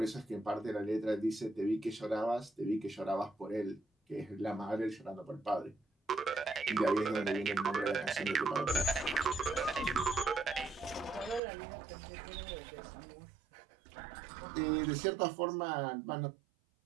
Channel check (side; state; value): left; drops out; at 11.4 s